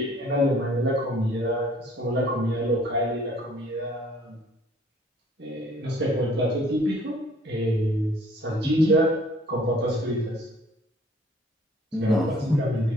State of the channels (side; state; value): both; normal; correlation 0.57